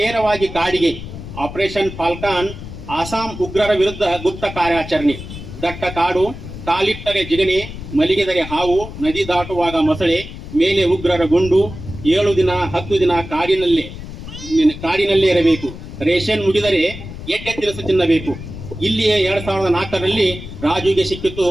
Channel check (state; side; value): noise; left; rumble, 11 dB below the sound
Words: ಕಾಡಿಗೆ. ಆಪರೇಷನ್ ಫಾಲ್ಕಾನ್ ಆಸಾಂ ಉಗ್ರರ ವಿರುದ್ಧ ಗುಪ್ತ ಕಾರ್ಯಾಚರಣೆ. ದಟ್ಟ ಕಾಡು, ಕಾಲಿಟ್ಟರೆ ಜಿಗಣೆ, ಮಲಿಗೆದರೆ ಹಾವು, ನದಿ ದಾಟುವಾಗ ಮೊಸಳೆ, ಮೇಲೆ ಉಗ್ರರ ಗುಂಡು. 7 ದಿನ 10 ದಿನ ಕಾಡಿನಲ್ಲೇ ಇರಬೇಕು. ರೇಷನ್ ಮುಗಿದರೆ ಎಡ್ಡೆ ತಿನಿಸು ತಿನ್ನಬೇಕು. ಇಲ್ಲಿಯೇ 2004ರಲ್ಲಿ ರಾಜುಗೆ ಸಿಕ್ಕಿತು